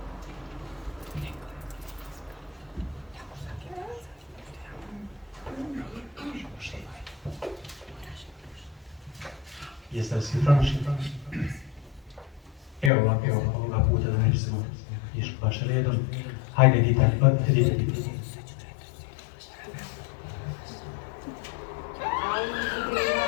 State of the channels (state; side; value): drops out; right; at 12.9 s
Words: Jeste li svi pronašli? Evo ovako, ovoga puta da nećemo išli baš redom. Hajde, dite.